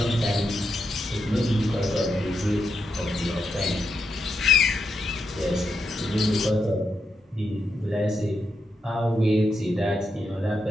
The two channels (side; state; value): both; normal; correlation 0.83